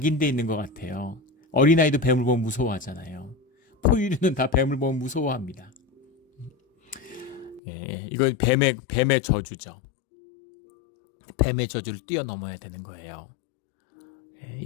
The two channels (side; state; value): right; drops out; at 7.6 s